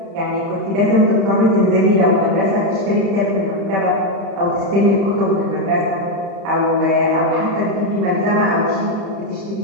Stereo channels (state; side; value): late; left; 32 ms